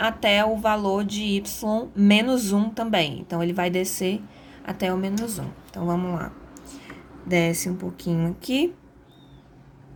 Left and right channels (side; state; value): both; identical; correlation 1.00